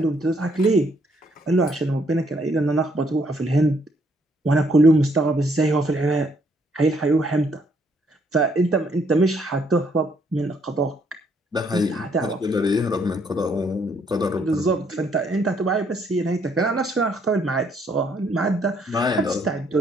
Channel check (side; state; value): both; normal; correlation 0.69